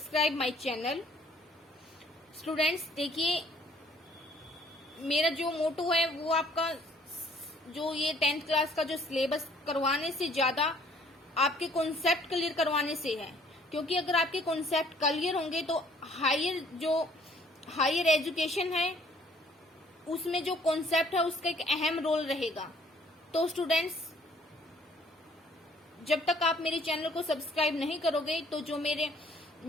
my channel. Students देखिए, मेरा जो मोटो है वो आपका जो ये 10th क्लास का जो सिलेबस करवाने से ज्यादा आपके कॉन्सेप्ट क्लियर करवाने से है, क्योंकि अगर आपके कॉन्सेप्ट क्लियर होंगे तो हायर एजुकेशन है उसमें जो कॉन्सेप्ट है उसका एक अहम रोल रहेगा। तो स्टूडेंट्स, जब तक आप मेरे चैनल को सब्सक्राइब नहीं करोगे तो जो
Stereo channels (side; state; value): both; normal; correlation 0.59